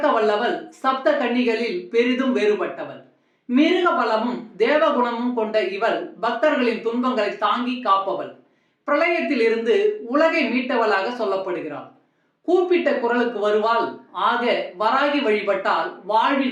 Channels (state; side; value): identical; both; correlation 1.00